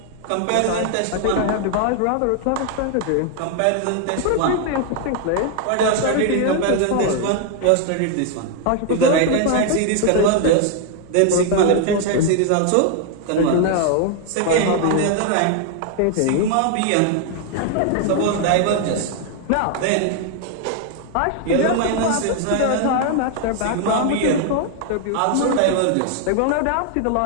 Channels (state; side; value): different; both; correlation 0.00